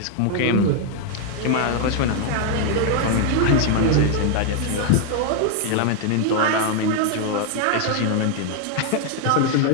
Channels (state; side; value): different; both; correlation 0.00